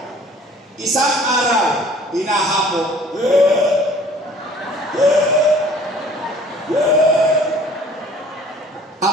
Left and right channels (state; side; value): normal; both; correlation 0.52